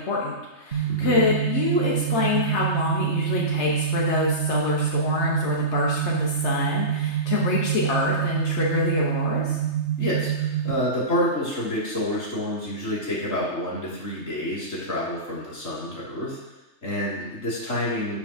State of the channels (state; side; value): late; right; 3.3 ms